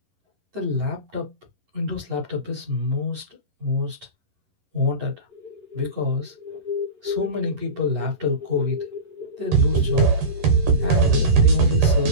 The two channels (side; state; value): left; late; 11 ms